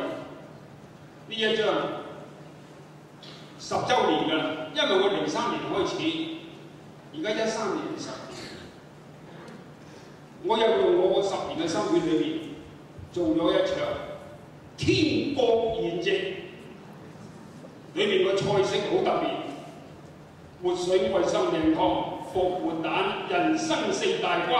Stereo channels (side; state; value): both; identical; correlation 1.00